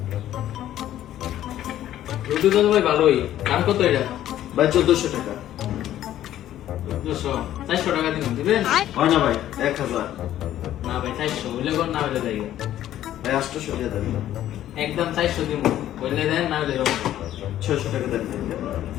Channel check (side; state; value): right; quieter; 12.4 dB